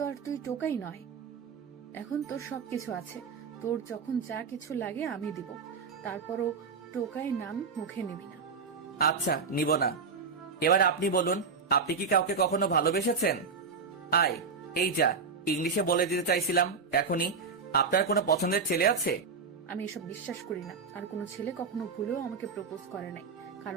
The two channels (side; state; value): left; quieter; 5.1 dB